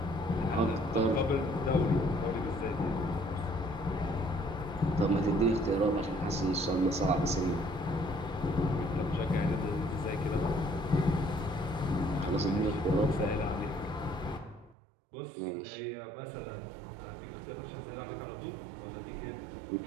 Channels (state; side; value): drops out; left; at 14.8 s